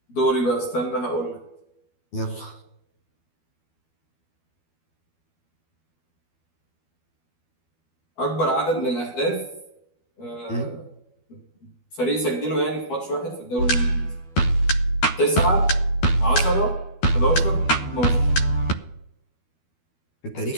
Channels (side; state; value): right; late; 12 ms